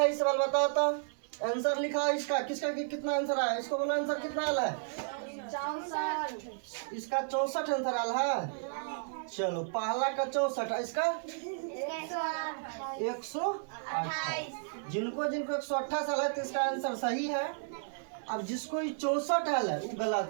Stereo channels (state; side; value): silent; left; digital silence